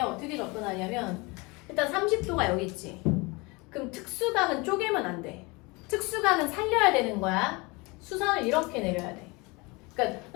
접근하냐면 일단 30도가 여기 있지. 그럼 특수각은 쪼개면 안 돼. 특수각은 살려야 되는 거야. 수선을 이렇게 내려야 돼. 그러니까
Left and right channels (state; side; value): quieter; right; 26.2 dB